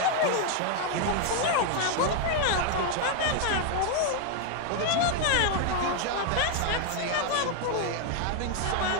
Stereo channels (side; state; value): both; different; correlation 0.01